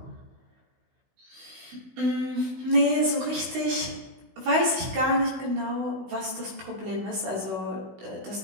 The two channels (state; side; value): late; left; 16 ms